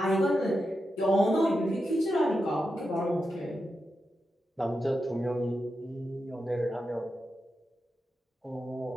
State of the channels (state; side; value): normal; both; correlation 0.88